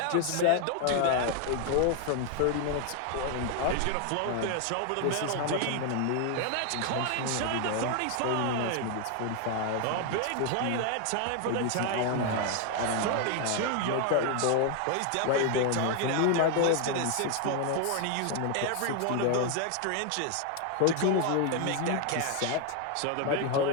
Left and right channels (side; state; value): both; different; correlation 0.01